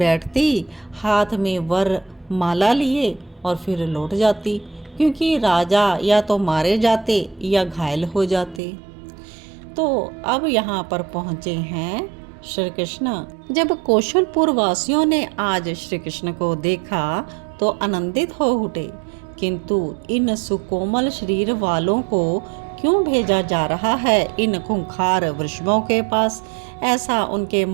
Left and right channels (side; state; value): left; drops out; at 8.6 s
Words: हाथ में वर माला लिए और फिर लौट जाती, क्योंकि राजा या तो मारे जाते या घायल हो जाते। तो अब यहाँ पर पहुँचे हैं श्री कृष्ण। जब कौशलपुर वासियों ने आज श्री कृष्ण को देखा तो आनंदित हो उठे, किंतु इन सुकोमल शरीर वालों को क्यों भेजा जा रहा है इन खूंखार वृषभों के पास, ऐसा उनके